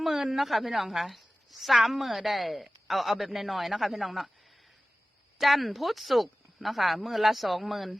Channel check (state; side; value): normal; both; correlation 0.96